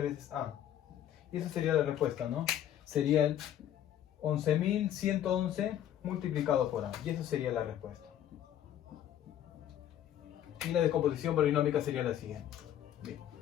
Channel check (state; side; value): quieter; right; 11.1 dB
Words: veces A. Y esa sería la respuesta, ¿no? Sería el 11.111 multiplicado por A. Y esa sería la respuesta. Y la decomposición polinómica sería la siguiente.